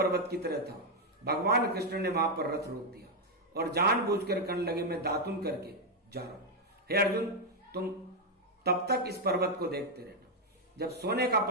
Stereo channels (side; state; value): both; normal; correlation 0.02